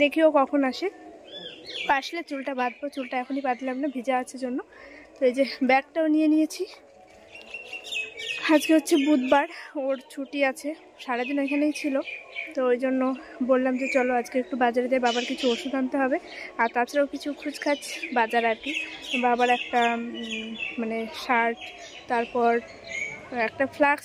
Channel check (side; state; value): both; identical; correlation 1.00